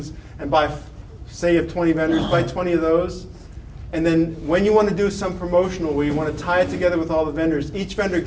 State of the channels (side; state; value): both; identical; correlation 1.00